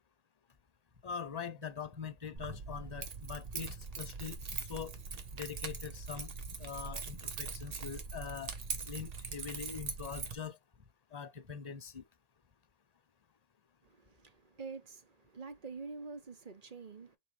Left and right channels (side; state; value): left; late; 1.8 ms